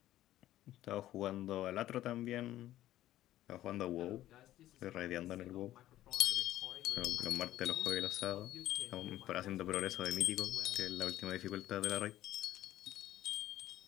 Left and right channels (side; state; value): right; quieter; 13.9 dB